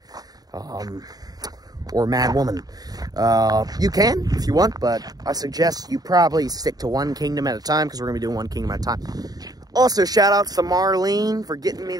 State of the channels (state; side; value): late; left; 0.18 ms